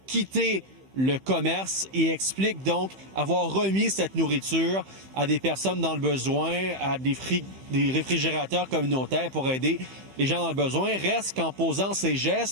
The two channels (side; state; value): left; late; 15 ms